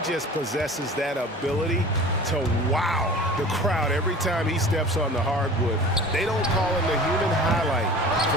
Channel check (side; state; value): both; normal; correlation 0.41